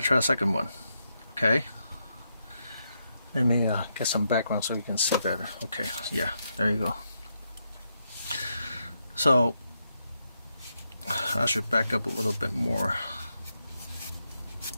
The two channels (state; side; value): inverted; both; correlation -0.82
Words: a second one. Okay. Let me get some background so you can see better. Okay. Yeah. There you go. So I should back up a little bit more.